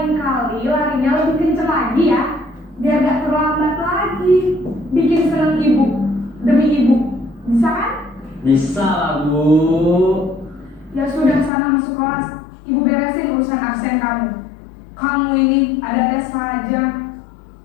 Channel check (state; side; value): drops out; right; at 11.5 s